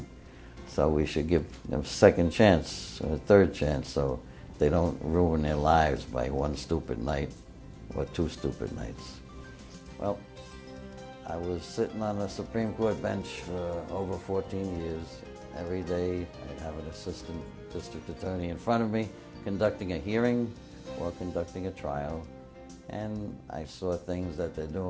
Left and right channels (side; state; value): both; identical; correlation 1.00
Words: So we should give them a second chance, or a third chance, so they don't ruin their lives by one stupid night or two stupid nights. Well, I was sitting on the Supreme Court bench for over 14 years. Every day I'd have an assistant district attorney in front of me conducting a hearing or conducting a trial. And I saw things that they're